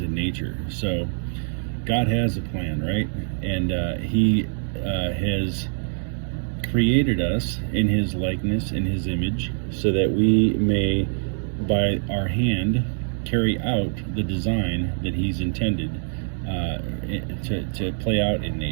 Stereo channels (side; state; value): left; silent; 62 dB below the other